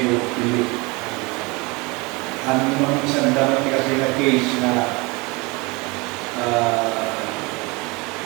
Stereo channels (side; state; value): left; quieter; 26.4 dB